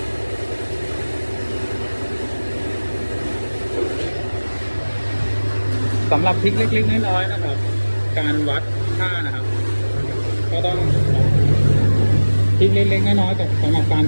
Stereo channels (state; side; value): inverted; both; correlation -1.00